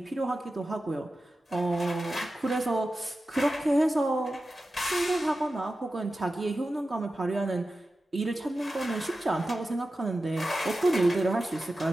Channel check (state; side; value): normal; both; correlation 0.93